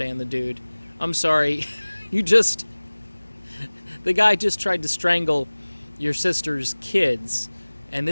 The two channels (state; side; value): inverted; both; correlation -1.00